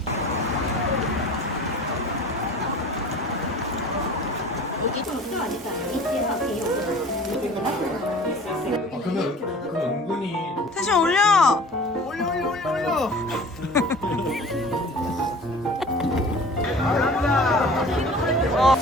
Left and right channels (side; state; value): both; normal; correlation 0.44